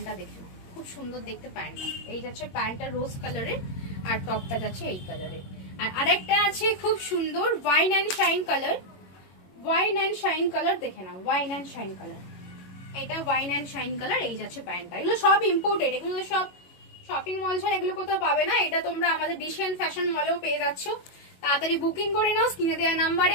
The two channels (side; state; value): right; late; 22 ms